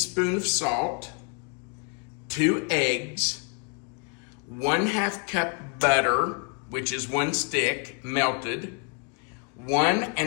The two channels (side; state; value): right; quieter; 34.6 dB